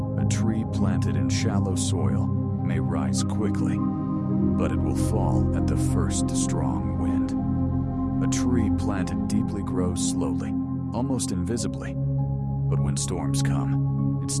A tree planted in shallow soil may rise quickly, but it will fall at the first strong wind. A tree planted deeply grows slowly, almost invisibly, but when storms come, it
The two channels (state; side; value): identical; both; correlation 1.00